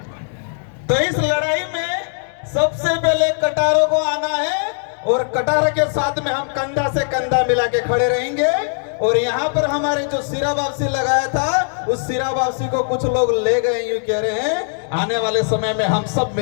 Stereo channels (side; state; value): right; silent; digital silence